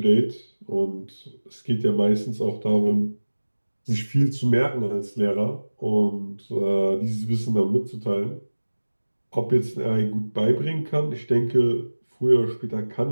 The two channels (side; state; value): both; inverted; correlation -1.00